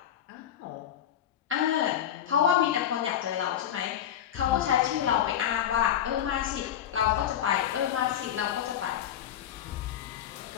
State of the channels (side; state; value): right; quieter; 10.4 dB